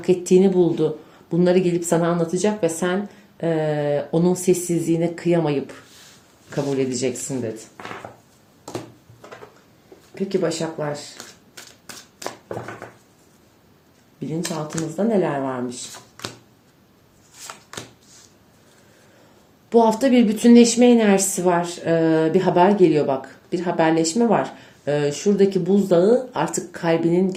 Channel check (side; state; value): both; identical; correlation 1.00